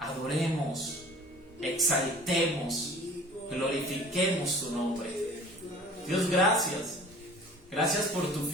exaltemos, glorifiquemos tu nombre. Dios, gracias. Gracias por tu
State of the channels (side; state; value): both; normal; correlation 0.46